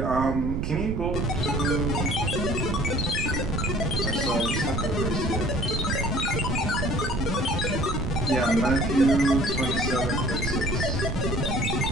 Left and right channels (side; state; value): right; noise; rumble, 1 dB below the sound